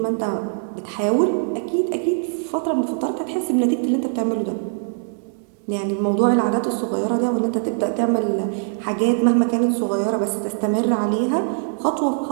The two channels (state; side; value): silent; left; 64 dB below the other